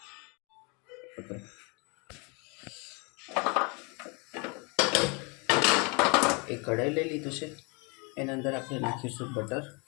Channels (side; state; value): right; quieter; 31.1 dB